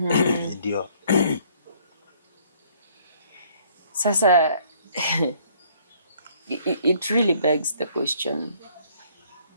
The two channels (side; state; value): both; inverted; correlation -0.62